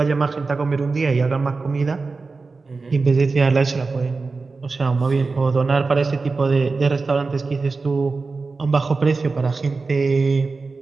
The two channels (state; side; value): quieter; left; 4.1 dB